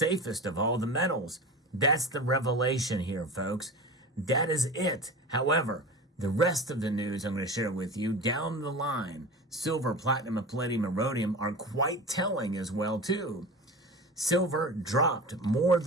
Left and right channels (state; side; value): normal; both; correlation 0.31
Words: of all the metals. That's the revelation here, folks. That is it. However, the rest of the news I'm going to share with you down the line, silver, platinum, and palladium, and rhodium are quite telling as well too. Silver dropped more